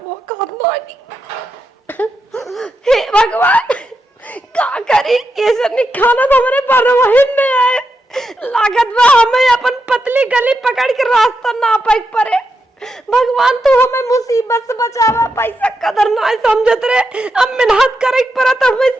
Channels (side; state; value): both; normal; correlation 0.85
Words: वो कहत नहीं। हे भगवान का करी, ये सब खाना तो हमारे परवाहिन में आए। लागत बा हमें अपन पतली गली पकड़ के रास्ता ना पाई पड़े। भगवान तू हमें मुसीबत से बचावा, पैसा कदर ना समझत रे, अब मेहनत करे पर तो हमें